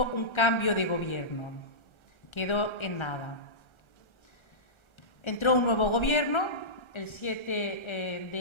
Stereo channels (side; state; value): right; late; 1.3 ms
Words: un cambio de gobierno. Quedó en nada. Entró un nuevo gobierno el 7 de